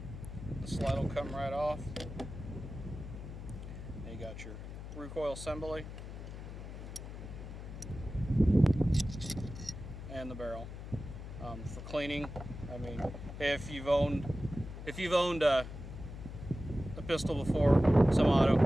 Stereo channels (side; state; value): left; noise; hum, 10 dB below the sound